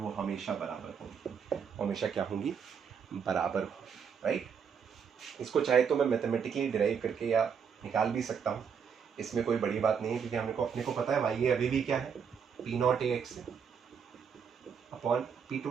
हमेशा बराबर होगी, हमेशा क्या होंगी, बराबर हो, राइट। इसको चाहे तो मैं मैथमेटिकली डिराइव करके या निकाल भी सकता हूँ, इसमें कोई बड़ी बात नहीं है, क्योंकि अपने को पता है वाई ए अभी भी क्या है, P not A X upon P two,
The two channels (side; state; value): left; quieter; 6.9 dB